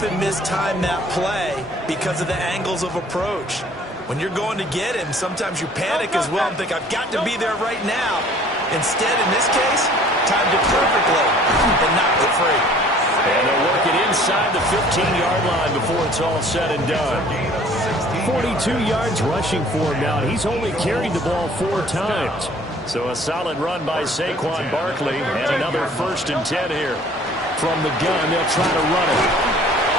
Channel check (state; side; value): normal; both; correlation 0.53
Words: mistime that play because of the angles of approach. When you're going to get him, sometimes you panic as well and think, I've got to be there right now. Instead, in this case, timed it perfectly and knocked it free. And they'll work it inside the 15-yard line before it's all said and done. 42 yards rushing for him now. He's only carried the ball 4 times. So a solid run by Saquon Barkley and another 1st and 10 here. From the gun, they'll try to run it.